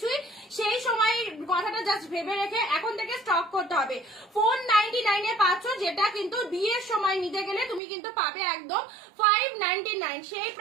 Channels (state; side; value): drops out; left; at 7.8 s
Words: ছুঁই, সেই সময় কথাটা জাস্ট ভেবে রেখে এখন থেকে স্টক করতে হবে। 499 পাচ্ছ, যেটা কিন্তু বিয়ের সময় নিতে গেলে তুমি কিন্তু পাবে একদম 599। সেই